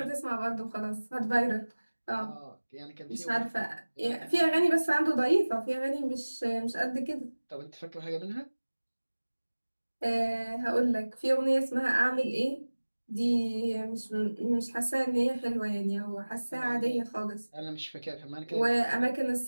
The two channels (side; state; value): both; inverted; correlation -1.00